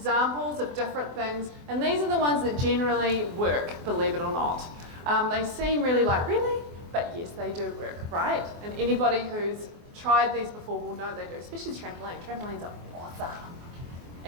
of different things, and these are the ones that generally work, believe it or not. They seem really but yes, they do work, right? And anybody who's tried these before will know they do, especially trampoline. Trampolines are awesome.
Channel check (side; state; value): left; late; 24 ms